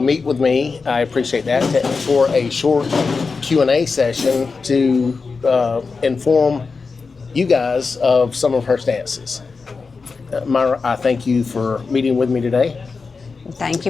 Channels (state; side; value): quieter; right; 4.6 dB